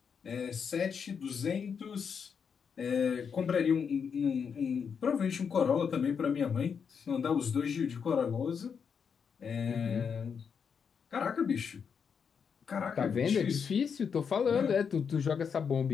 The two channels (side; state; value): right; quieter; 6.6 dB